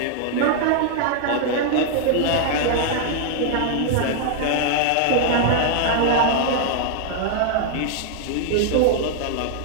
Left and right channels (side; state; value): both; different; correlation 0.00